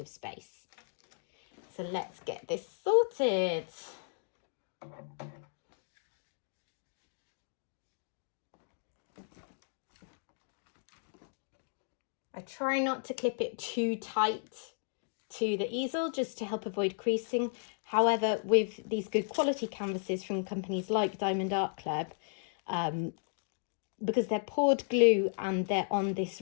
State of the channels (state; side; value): silent; right; digital silence